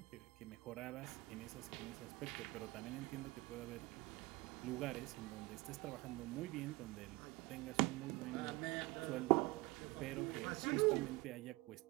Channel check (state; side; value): quieter; left; 22.5 dB